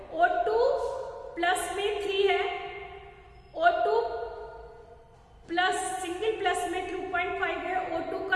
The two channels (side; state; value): both; identical; correlation 1.00